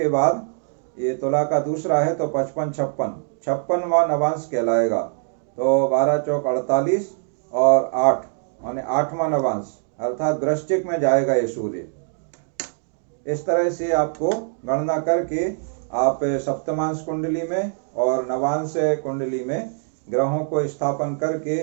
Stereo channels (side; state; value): left; silent; digital silence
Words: बाद ये तुला का दूसरा है तो 55 56 56वां नवांश कहलाएगा। तो 12 चौक 48 और 8 माने 8वां नवांश अर्थात वृश्चिक में जाएगा ये सूर्य। इस तरह से आपको गणना करके आप सप्तमांश कुंडली में और नवांश कुंडली में ग्रहों को स्थापन करके